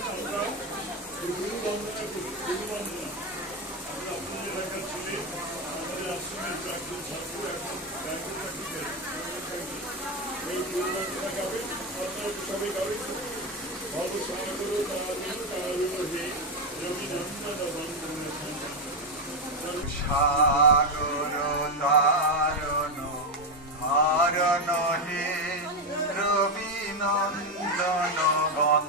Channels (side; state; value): both; normal; correlation 0.08